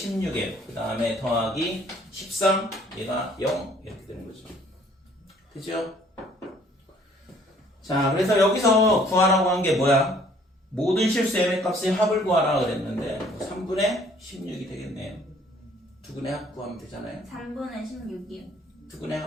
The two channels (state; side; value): normal; both; correlation 0.59